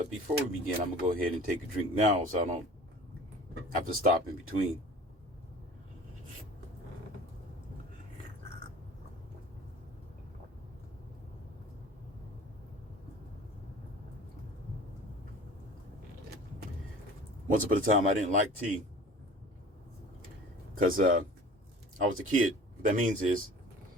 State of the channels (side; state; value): both; normal; correlation 0.44